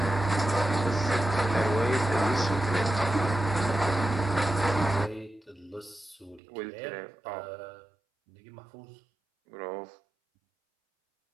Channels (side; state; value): left; drops out; at 6.4 s